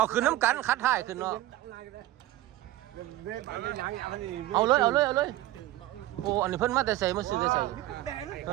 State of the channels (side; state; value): left; quieter; 15.6 dB